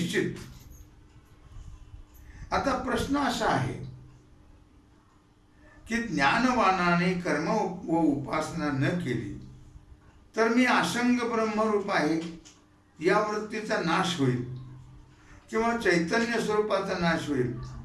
आता प्रश्न असा आहे की ज्ञानवानाने कर्म व उपासना न केली तर मी असंग ब्रह्मरूप आहे या वृत्तीचा नाश होईल किंवा चैतन्य स्वरूपाचा नाश होईल.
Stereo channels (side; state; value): both; identical; correlation 1.00